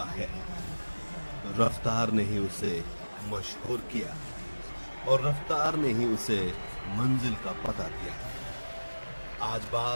है। रफ्तार ने ही उसे मशहूर किया और रफ्तार ने ही उसे मंजिल का पता दिया। आज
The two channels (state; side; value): inverted; both; correlation -1.00